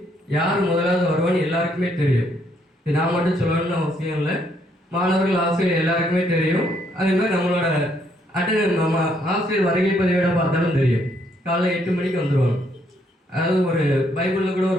யார் முதலாவது வருவான்னு எல்லாருக்குமே தெரியும். இது நான் மட்டும் சொல்லணும்னு அவசியம் இல்லை, மாணவர்கள் ஆசிரியர் எல்லாருக்குமே தெரியும். அதே மாதிரி நம்மளோட நம்ம ஆசிரியர் வருகை பதிவேட பார்த்தாலும் தெரியும், காலையில் 8 மணிக்கு வந்துடுவாங்க. அதாவது ஒரு பைபிளில் கூட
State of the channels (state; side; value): normal; both; correlation 0.71